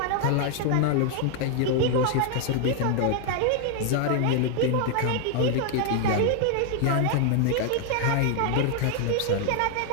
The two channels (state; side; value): different; both; correlation 0.00